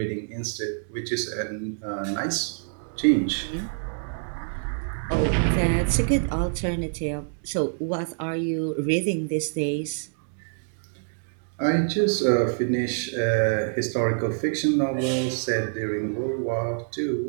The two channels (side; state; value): left; silent; digital silence